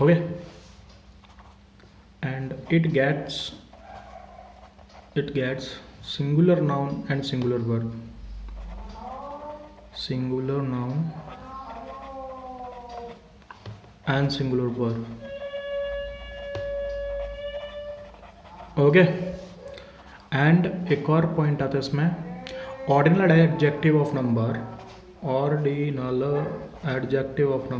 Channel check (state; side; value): identical; both; correlation 1.00